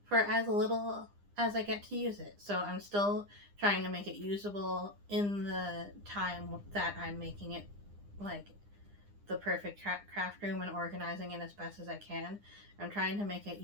for as little as I get to use it. So I'm still trying to make it usable in the time that I'm making it like the perfect craft room and organizing it as best as I can. I'm trying to make it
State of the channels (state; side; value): late; left; 9.9 ms